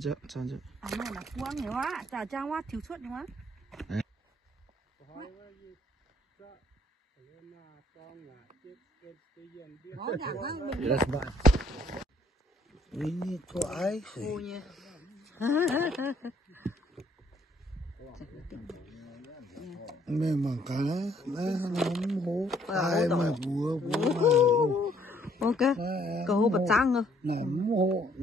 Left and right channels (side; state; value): both; normal; correlation 0.65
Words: chứ. À này là quăng nhiều quá, chả trang quá thiếu suất nhiều quá. That's bad. Ini kok ai? Ôi nha. Memang kalah, nóng hố. Ai mà bùa. Ok, cầu hô bật trăng rồi. Nóng hố